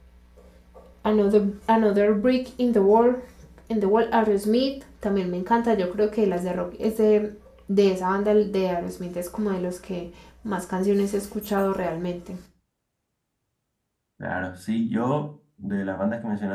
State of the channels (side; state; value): both; identical; correlation 1.00